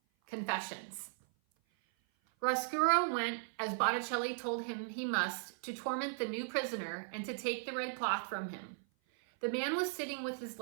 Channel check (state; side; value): silent; left; 53 dB below the other